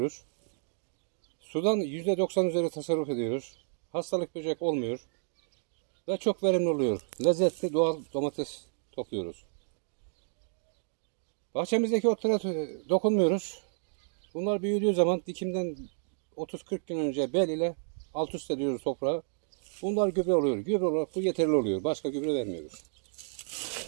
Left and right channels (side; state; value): left; silent; digital silence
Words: Sudan %90 üzeri tasarruf ediyoruz. Hastalık böcek olmuyor. Ve çok verimli oluyor. Lezzetli doğal domates topluyoruz. Bahçemizdeki otlara dokunmuyoruz. Bunlar büyüdüğü zaman dikimden 30-40 gün önce bel ile alt üst ediyoruz toprağa. Bunlar gübre oluyor. Gübre olarak bu yeterli oluyor. Başka gübre vermiyoruz.